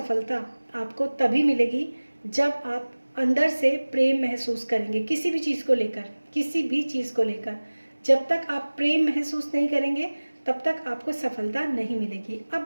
आपको तभी मिलेगी जब आप अंदर से प्रेम महसूस करेंगे किसी भी चीज़ को लेकर, किसी भी चीज़ को लेकर। जब तक आप प्रेम महसूस नहीं करेंगे तब तक आपको सफलता नहीं मिलेगी।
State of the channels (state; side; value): inverted; both; correlation -1.00